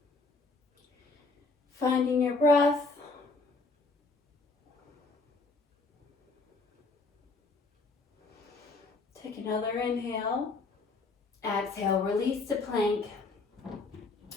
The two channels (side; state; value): right; quieter; 3.7 dB